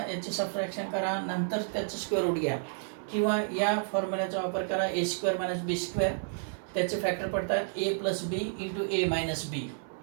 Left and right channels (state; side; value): silent; left; digital silence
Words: याची सबट्रॅक्शन करा, नंतर त्याचं स्क्वेअर रूट घ्या, किंवा या फॉर्म्युल्याचा वापर करा, A square minus B square. त्याचे फॅक्टर पडतात A plus B into A minus B.